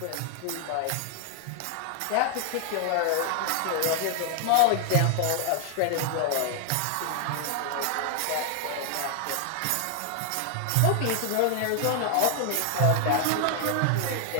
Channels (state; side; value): different; both; correlation 0.00